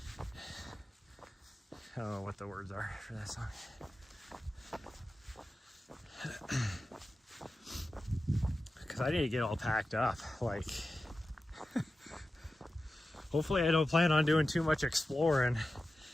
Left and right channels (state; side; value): normal; both; correlation 0.94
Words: I don't know what the words are for that song. Because I need to get all packed up. Like, hopefully I don't plan on doing too much exploring,